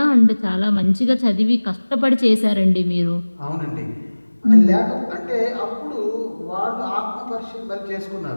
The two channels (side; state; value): both; inverted; correlation -1.00